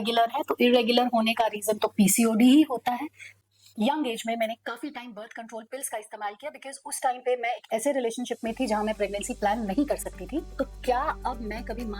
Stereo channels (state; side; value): identical; both; correlation 1.00